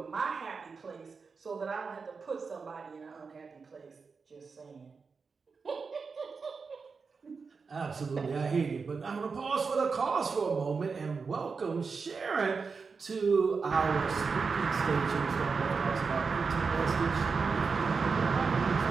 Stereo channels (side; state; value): left; quieter; 5.0 dB